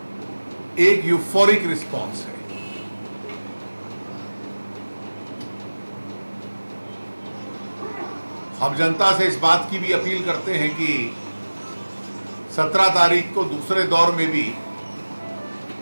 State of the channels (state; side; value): inverted; both; correlation -1.00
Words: एक यूफोरिक रिस्पॉन्स है। हम जनता से इस बात की भी अपील करते हैं कि 17 तारीख को दूसरे दौर में भी